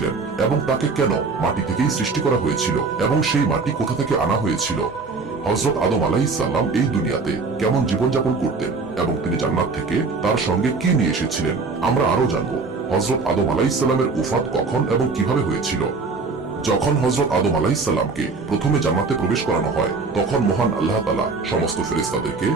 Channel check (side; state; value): left; quieter; 4.2 dB